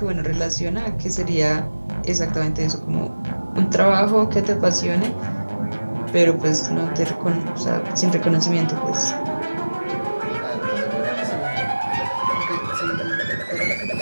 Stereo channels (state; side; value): inverted; both; correlation -1.00